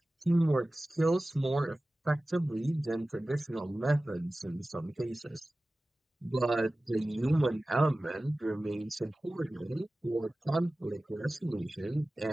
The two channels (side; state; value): both; normal; correlation 0.97